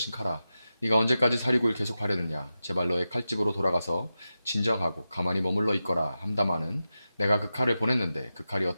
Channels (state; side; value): inverted; both; correlation -0.92